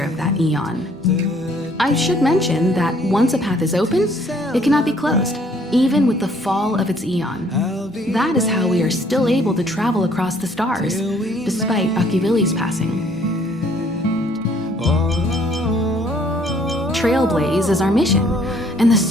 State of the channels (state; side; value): normal; both; correlation 0.62